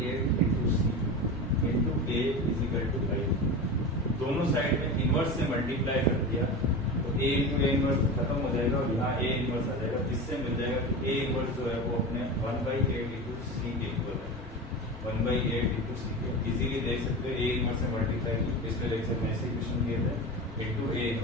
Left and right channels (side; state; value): both; normal; correlation 0.26